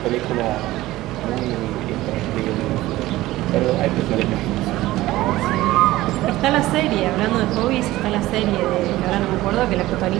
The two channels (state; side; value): quieter; left; 17.0 dB